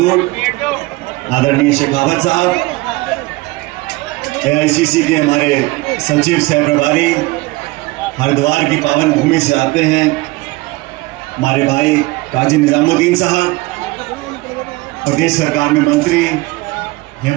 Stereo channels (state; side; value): quieter; left; 21.8 dB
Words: आदरणीय शेखावत साहब, AICC के हमारे सचिव सह प्रभारी, हरिद्वार की पावन भूमि से आते हैं हमारे भाई काजी निजामुद्दीन साहब, प्रदेश सरकार में मंत्री